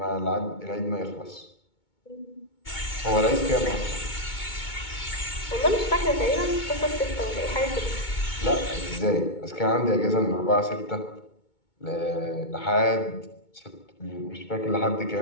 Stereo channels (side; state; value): right; late; 2.2 ms